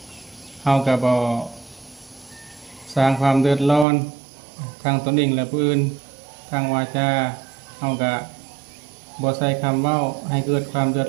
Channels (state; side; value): drops out; left; at 3.9 s